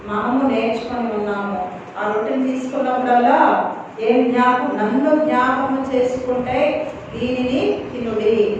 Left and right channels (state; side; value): identical; both; correlation 1.00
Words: మనము నేర్చుకొని ఉన్నామో, ఆ రొట్టెని తీసుకున్నప్పుడల్లా నన్ను జ్ఞాపకం చేసుకుంటే దీనిని తినుడి,